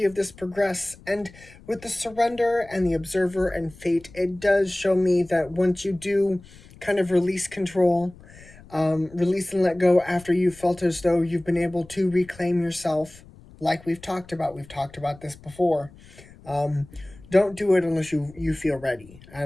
of this progress, and with the surrender and the observer and fate, it does show me that once you do kind of release control, release and let go after you felt as though you've been able to reclaim yourself, like we've talked about this before. Don't do it unless you feel ready.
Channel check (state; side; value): noise; left; rumble, 22 dB below the sound